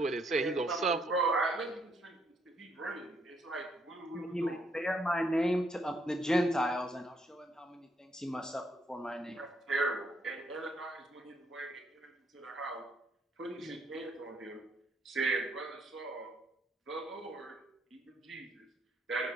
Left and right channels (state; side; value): normal; both; correlation 0.72